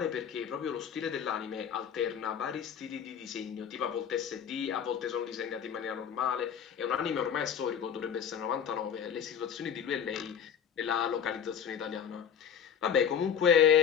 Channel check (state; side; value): quieter; right; 8.1 dB